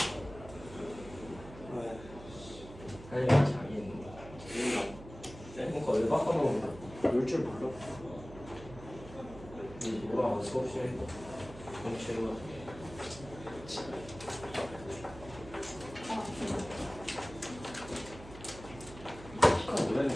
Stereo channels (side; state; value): right; noise; hum, 16 dB below the sound